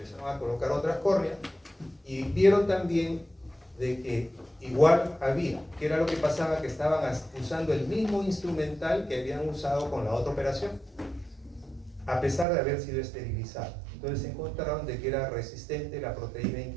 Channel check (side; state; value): left; drops out; at 12.5 s